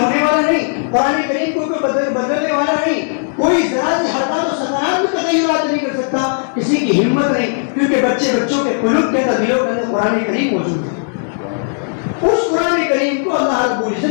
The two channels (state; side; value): silent; right; digital silence